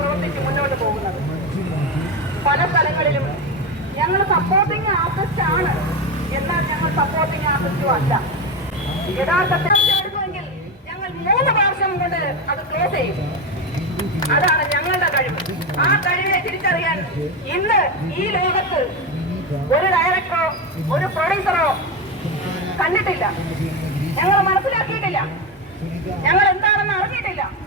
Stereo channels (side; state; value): both; normal; correlation 0.15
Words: മുന്നോട്ട് പോകുന്നത്. പല സ്ഥലങ്ങളിലും ഞങ്ങൾ സപ്പോർട്ടിങ് ആർട്ടിസ്റ്റ് ആണ്, എന്നാൽ ഞങ്ങൾ സപ്പോർട്ടിങ് ആർട്ടിസ്റ്റും അല്ല. യഥാർത്ഥത്തിൽ എടുക്കുമെങ്കിൽ ഞങ്ങൾ 3 പ്രാവശ്യം കൊണ്ട് അത് ക്ലോസ് ചെയ്യും. അതാണ് ഞങ്ങളുടെ കഴിവ്. ആ കഴിവിനെ തിരിച്ചറിയാൻ ഇന്ന് ഈ ലോകത്ത് ഒരു ഡയറക്ടറോ ഒരു പ്രൊഡ്യൂസറോ കണ്ടിട്ടില്ല. ഞങ്ങൾ മനസ്സിലാക്കിയിട്ടില്ല. ഞങ്ങൾ എന്താണെന്ന് അറിഞ്ഞിട്ടില്ല.